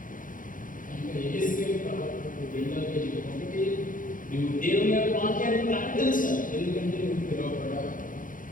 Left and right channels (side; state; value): right; late; 0.39 ms